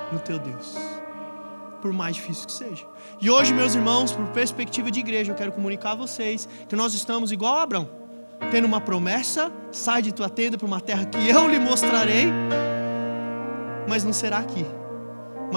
no teu Deus, por mais difícil que seja. E hoje, meus irmãos, por perspectiva de igreja, eu quero comunicar a vocês que nós estamos igual a Abraão, tendo uma promessa: sai de tua tenda para uma terra que eu lhe mostrarei. Mas não será aqui.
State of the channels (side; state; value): both; inverted; correlation -1.00